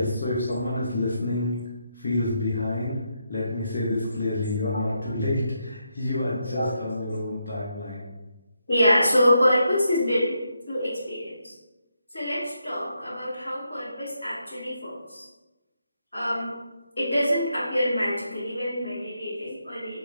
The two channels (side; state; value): both; inverted; correlation -0.81